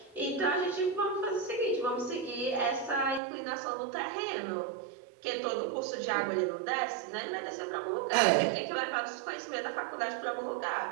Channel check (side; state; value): left; drops out; at 3.2 s